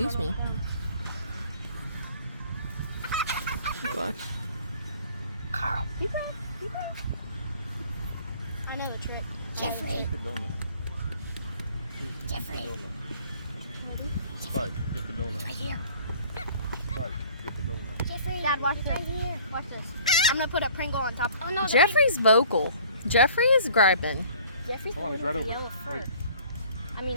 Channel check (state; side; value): inverted; both; correlation -0.52